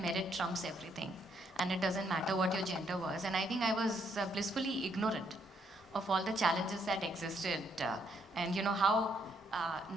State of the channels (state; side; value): normal; both; correlation 0.72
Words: merit trumps everything and it doesn't matter what your gender was. And I think I was blissfully ignorant of all the challenges that existed and how